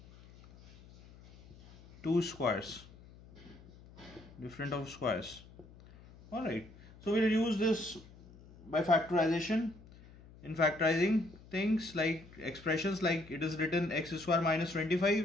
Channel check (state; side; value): noise; left; hum, 22 dB below the sound